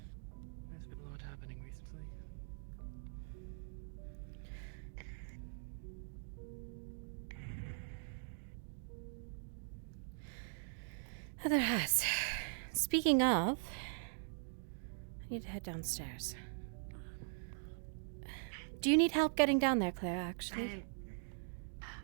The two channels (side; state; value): left; silent; digital silence